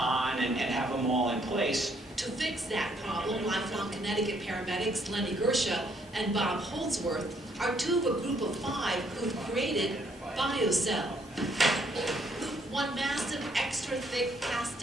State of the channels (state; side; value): normal; both; correlation 0.69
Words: and have them all in place. To fix that problem, lifelong Connecticut paramedics Lenny Gersha and Bob Holdsworth are two of a group of 5 who've created BioCell. One massive extra thick